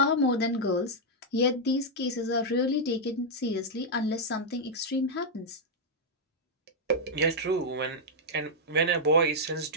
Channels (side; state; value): both; normal; correlation -0.04